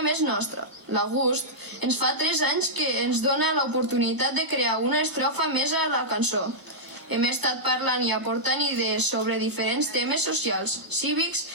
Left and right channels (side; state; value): left; late; 1.0 ms